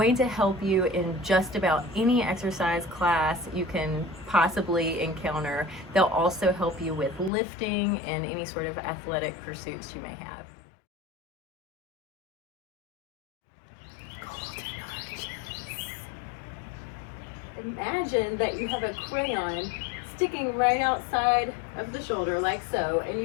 to help you in just about any exercise class you can possibly encounter. They'll also help you with lifting and any sort of athletic pursuits you may have. Imagine that you have a crayon sticking right outside of the shoulder like so, and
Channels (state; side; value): drops out; right; at 7.3 s